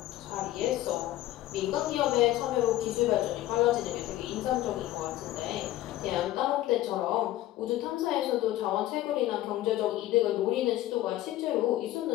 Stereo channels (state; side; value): quieter; right; 14.9 dB